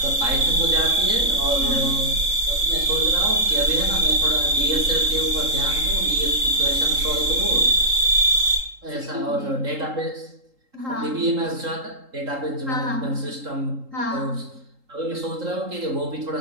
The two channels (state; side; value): late; left; 3.8 ms